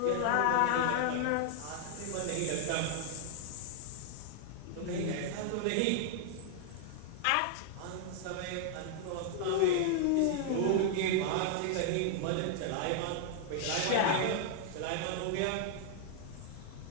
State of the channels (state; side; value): different; both; correlation 0.00